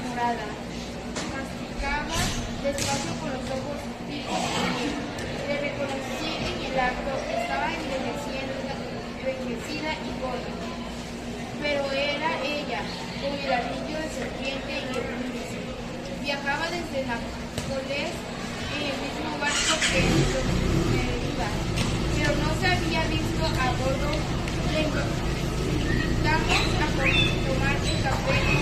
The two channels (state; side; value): identical; both; correlation 1.00